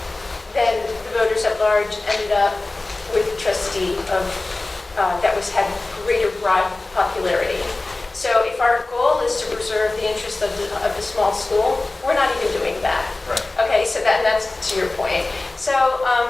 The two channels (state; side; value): quieter; right; 3.1 dB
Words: then the voters at large ended up with a trustee that had greater broad popularity. So if our goal is to preserve the interest of the small school, we're not even doing that. Right. Okay, so that's to your point. So